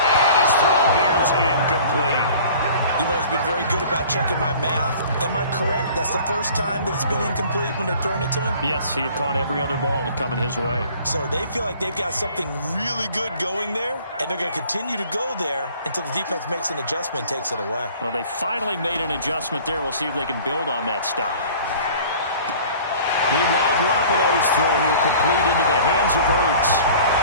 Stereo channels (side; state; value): both; inverted; correlation -0.48